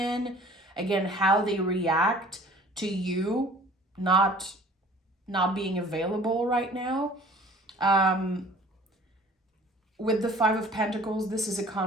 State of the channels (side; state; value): both; normal; correlation 0.49